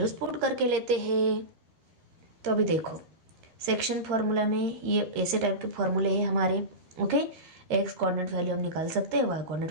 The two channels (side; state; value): left; late; 13 ms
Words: पुट करके लेते हैं। तो अभी देखो सेक्शन फॉर्मूला में ये ऐसे टाइप के फॉर्मूले हैं हमारे। ओके, एक्स कोऑर्डिनेट वैल्यू हम निकाल सकते हैं, वाई कोऑर्डिनेट